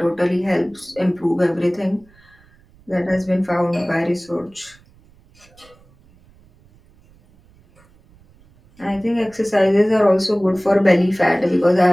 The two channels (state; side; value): noise; right; rumble, 30 dB below the sound